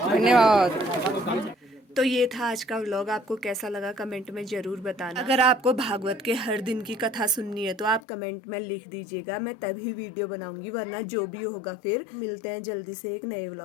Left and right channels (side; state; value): right; drops out; at 8.0 s